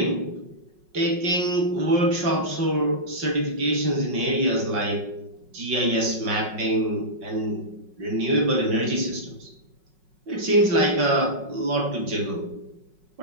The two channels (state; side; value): late; left; 5.4 ms